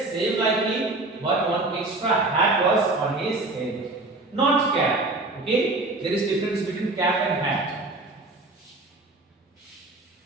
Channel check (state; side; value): quieter; left; 3.0 dB